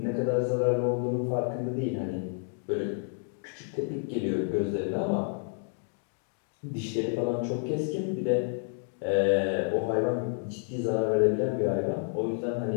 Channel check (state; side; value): silent; right; 58 dB below the other